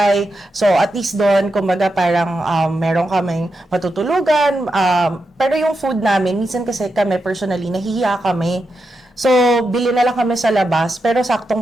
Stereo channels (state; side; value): normal; both; correlation 0.87